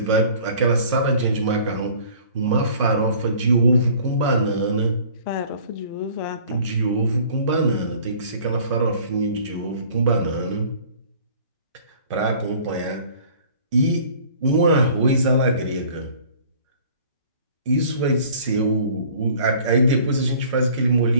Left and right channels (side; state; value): both; inverted; correlation -0.51